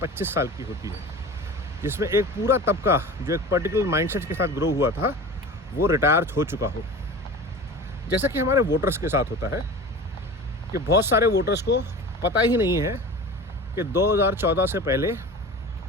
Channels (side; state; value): both; normal; correlation 0.35